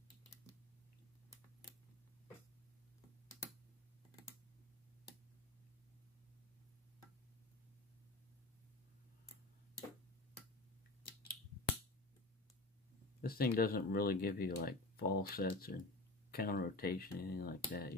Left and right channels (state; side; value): quieter; right; 3.3 dB